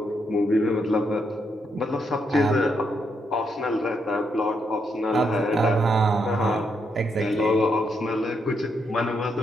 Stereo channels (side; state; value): both; normal; correlation 0.78